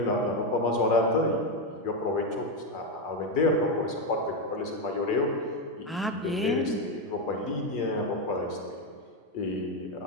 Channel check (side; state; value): both; normal; correlation 0.08